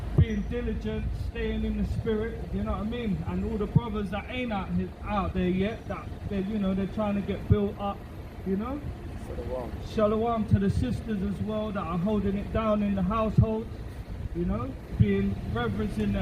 being diligent, staying in the spirit, you know what I mean? And all the brothers that ain't out there yet, that they're, you know, they're trying to get built up, you know. Shalom. Shalom to the sisters as well that are holding it down in the household, you know, being reverencing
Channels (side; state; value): both; identical; correlation 1.00